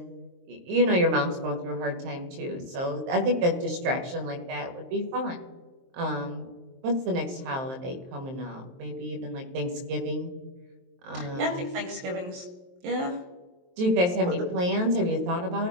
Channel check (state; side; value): late; left; 23 ms